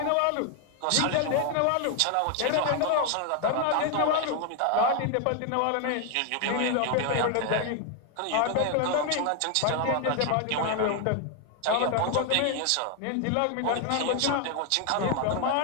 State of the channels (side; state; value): both; different; correlation 0.01